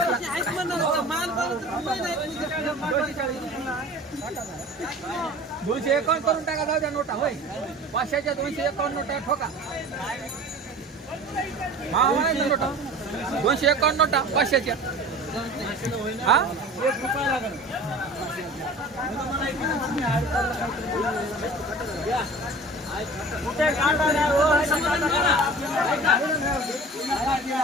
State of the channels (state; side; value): normal; both; correlation 0.40